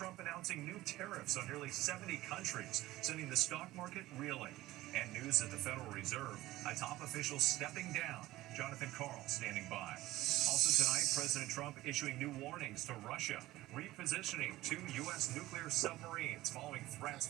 announcing new tariffs on nearly 70 countries, sending the stock market reeling. And news at the Federal Reserve, a top official stepping down. Jonathan Karl standing by. Also tonight, President Trump issuing new warnings to Russia, repositioning 2 U.S. nuclear submarines following threats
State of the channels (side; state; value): left; quieter; 16.9 dB